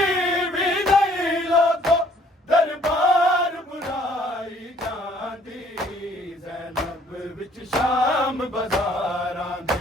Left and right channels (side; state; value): both; normal; correlation 0.60